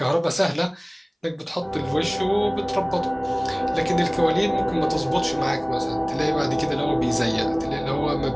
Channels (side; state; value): both; identical; correlation 1.00